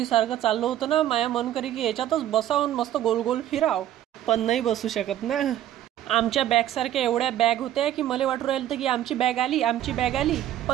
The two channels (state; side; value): quieter; left; 12.0 dB